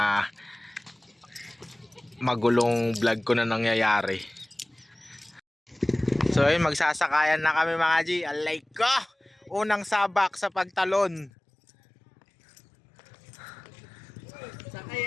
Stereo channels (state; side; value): drops out; right; at 11.3 s